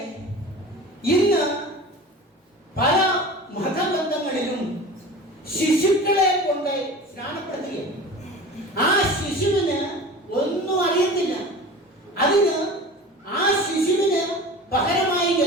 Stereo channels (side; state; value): both; normal; correlation 0.36